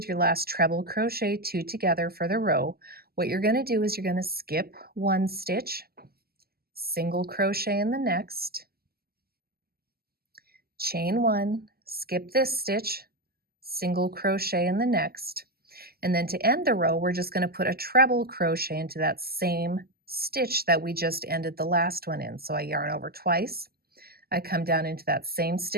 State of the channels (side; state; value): left; late; 0.45 ms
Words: your last treble crochet 2 together for the row, what you're going to do is you're going to skip 1 stitch, single crochet in the next, chain 1, skip this stitch, single crochet in the next, and then to end the row, we're just going to put a treble crochet into that same stitch that we just ended the last one in. So I yarn over twice, I come down into that same